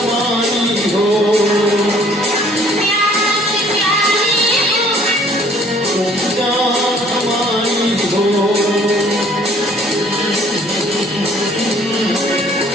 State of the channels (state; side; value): normal; both; correlation 0.57